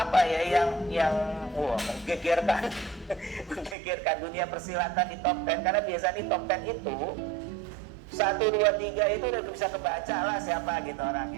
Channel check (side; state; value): left; drops out; at 3.8 s